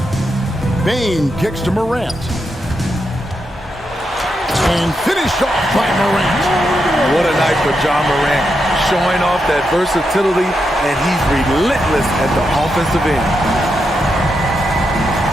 Bain kicks to Morant. And finished off by Morant. What a night for John Morant, showing off that versatility, and he's relentless at the offensive end.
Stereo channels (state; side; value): normal; both; correlation 0.84